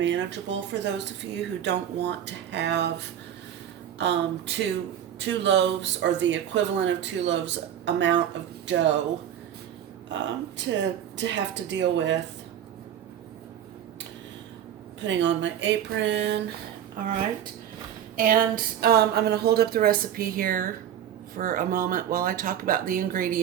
for those of you who don't want to have two loaves or the equivalent of 2 loaves amount of dough to have to deal with. Putting on my apron. All right. And I'm going to hold up the recipe here for a moment while I talk about the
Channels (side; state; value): left; quieter; 10.2 dB